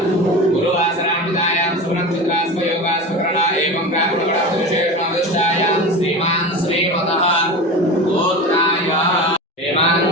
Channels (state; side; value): normal; both; correlation 0.28